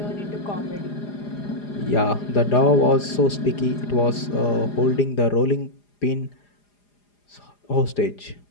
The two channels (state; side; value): late; right; 4.9 ms